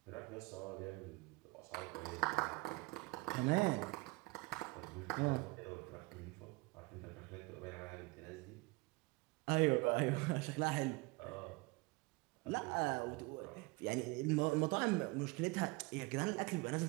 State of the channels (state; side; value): quieter; left; 25.3 dB